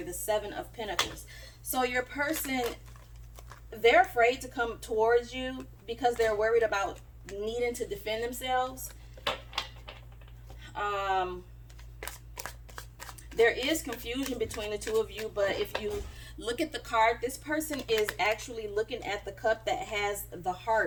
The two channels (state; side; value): identical; both; correlation 1.00